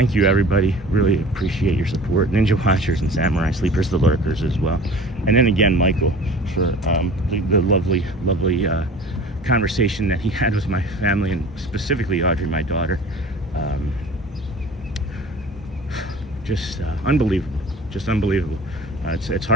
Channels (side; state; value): both; normal; correlation 0.42